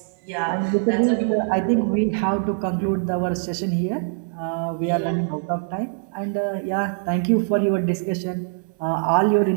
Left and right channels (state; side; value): silent; left; digital silence